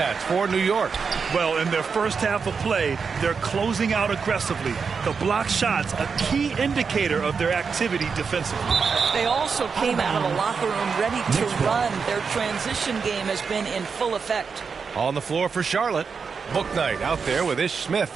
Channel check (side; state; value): left; quieter; 5.6 dB